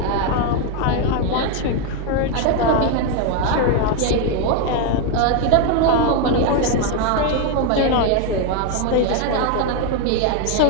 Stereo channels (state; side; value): different; both; correlation 0.01